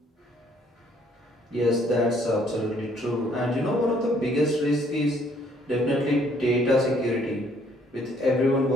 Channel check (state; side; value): normal; both; correlation 0.64